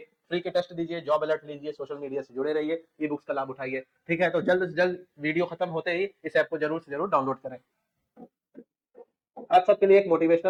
फ्री के टेस्ट दीजिए, जॉब अलर्ट लीजिए, सोशल मीडिया से जुड़े रहिए, ई बुक्स का लाभ उठाइए। ठीक है, तो जल्द से जल्द वीडियो खत्म होते ही इस ऐप को जरूर से जरूर डाउनलोड करें। आप सबके लिए एक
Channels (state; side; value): identical; both; correlation 1.00